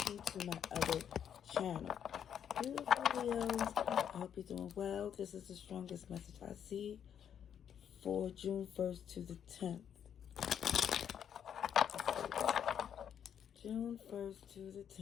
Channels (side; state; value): right; quieter; 8.8 dB